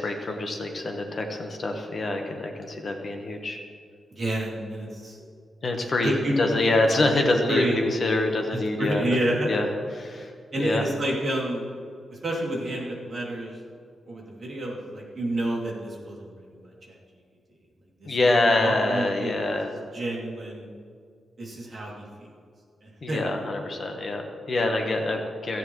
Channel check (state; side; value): normal; both; correlation 0.85